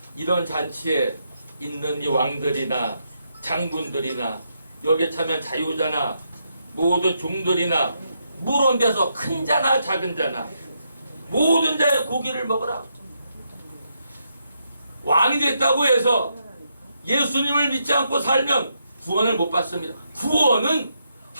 이런 잔치에 있는 이 왕들이나 장군들이나 여기에 참여한 자유자나 모든 종들이나 물온 데서 큰 자나 작은 자나 모든 자의 고기를 먹으라. 왕이 됐다고 해서 예수님을 믿지 않고 살면 구원을 못 받습니다. 구원은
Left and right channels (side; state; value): both; inverted; correlation -0.80